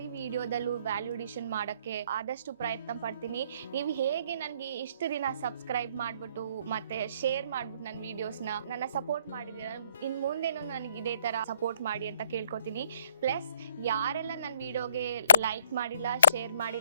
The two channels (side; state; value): both; inverted; correlation -0.64